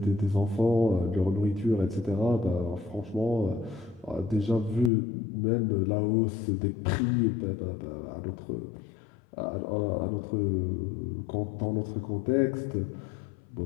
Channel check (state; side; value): drops out; right; at 4.9 s